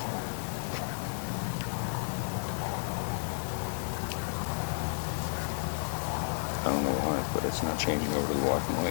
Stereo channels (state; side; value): silent; right; digital silence